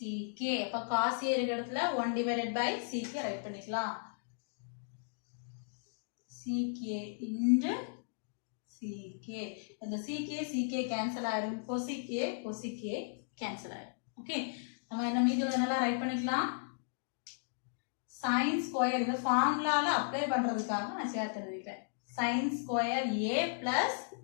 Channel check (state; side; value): silent; right; digital silence